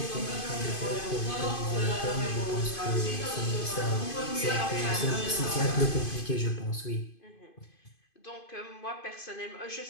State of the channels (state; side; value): late; right; 2.5 ms